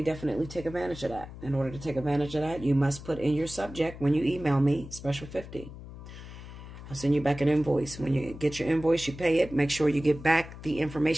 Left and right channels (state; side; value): noise; left; hum, 14 dB below the sound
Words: definitely take advantage of that. In order to take advantage of that, you must put in your subject when you email me, Special 50. I'll send you back an invoice. When you get your invoice, you pay it. Make sure you get back the